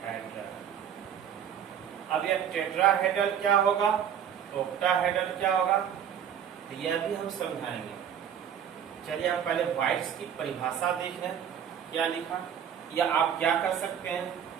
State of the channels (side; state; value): left; quieter; 8.8 dB